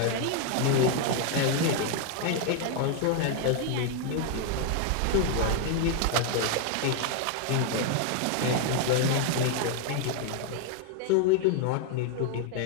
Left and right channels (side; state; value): both; different; correlation 0.00